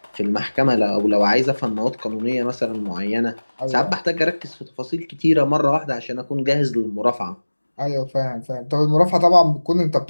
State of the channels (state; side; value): inverted; both; correlation -1.00